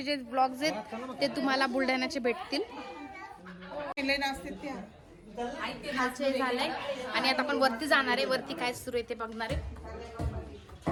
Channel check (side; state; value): both; identical; correlation 1.00